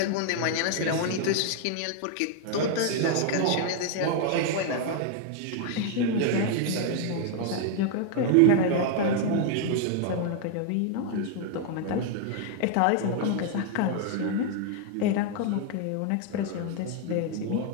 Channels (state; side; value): different; both; correlation 0.00